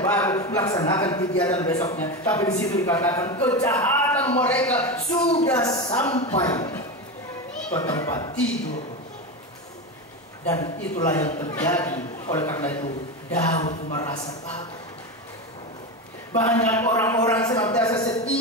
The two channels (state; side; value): normal; both; correlation 0.19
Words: baru melaksanakan kegiatan besoknya. Tapi di situ dikatakan kejahatan mereka sudah sampai ke tempat tidur. Dan itulah yang terjadi. Oleh karena itu Daud merasa takut. Banyak orang-orang senantiasa